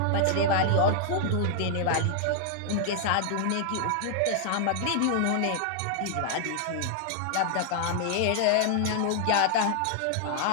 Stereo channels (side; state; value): both; different; correlation 0.00